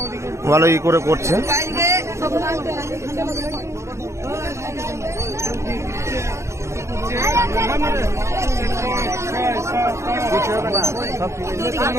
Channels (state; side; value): late; left; 0.14 ms